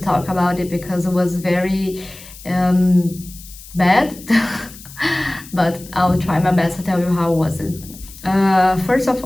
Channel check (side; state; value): left; noise; hiss, 18 dB below the sound